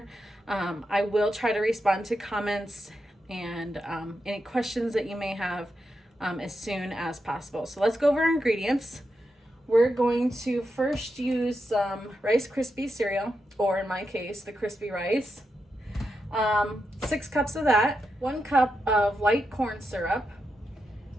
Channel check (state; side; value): normal; both; correlation 0.86